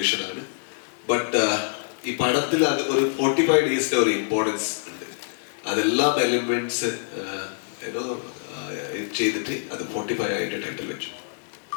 ആണ്. ബട്ട് ഈ പടത്തിൽ അത് ഒരു 45 ഡേയ്സിന്റെ ഒരു ഇമ്പോർട്ടൻസ് ഉണ്ട്. അതെല്ലാം എലിമെന്റ്സ് ചെയ്തിട്ട് അത് 45 ആയിട്ട് ടൈറ്റിൽ വെച്ചു.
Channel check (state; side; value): silent; right; 61 dB below the other